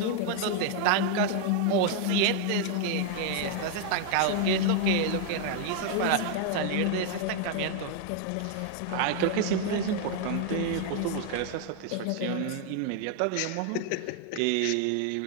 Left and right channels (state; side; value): different; both; correlation 0.01